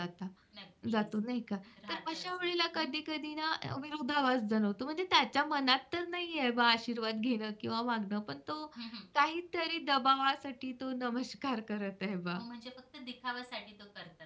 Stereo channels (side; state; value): both; identical; correlation 1.00